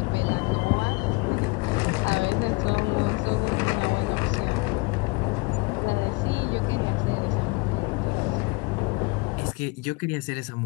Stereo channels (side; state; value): right; quieter; 27.1 dB